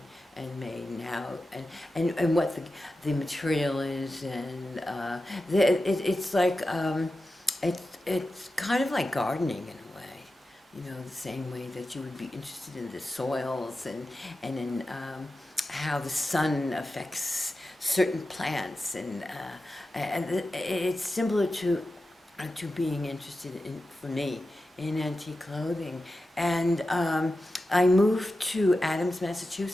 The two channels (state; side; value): normal; both; correlation 0.92